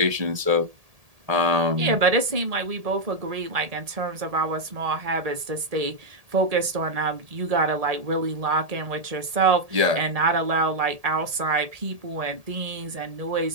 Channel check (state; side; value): late; left; 1.8 ms